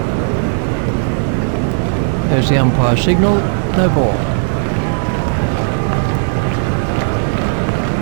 There's the umpire signal, no ball.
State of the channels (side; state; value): left; silent; 64 dB below the other